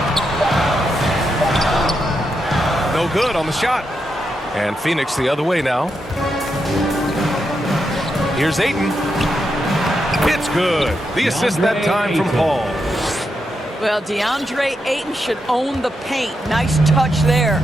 No good on the shot. And Phoenix the other way now. Here's Ayton. It's good. The assist that time from Paul. Well, DeAndre Ayton should own the paint. Nice touch there.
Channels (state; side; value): normal; both; correlation 0.84